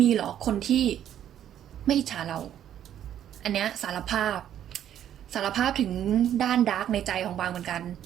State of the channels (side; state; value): left; quieter; 10.6 dB